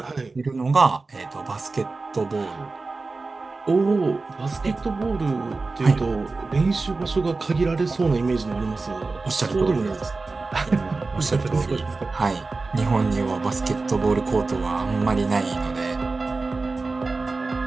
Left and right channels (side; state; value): left; quieter; 3.7 dB